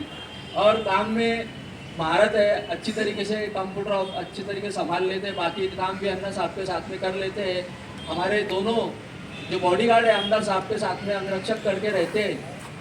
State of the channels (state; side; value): identical; both; correlation 1.00